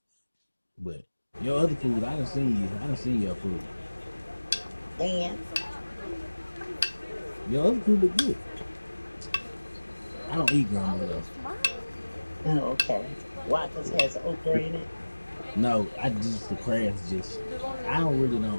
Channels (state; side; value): inverted; both; correlation -1.00